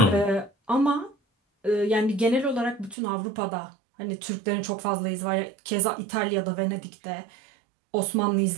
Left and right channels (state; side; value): drops out; left; at 3.0 s